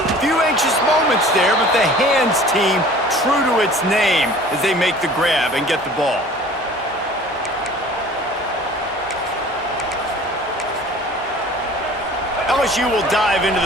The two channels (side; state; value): both; normal; correlation 0.46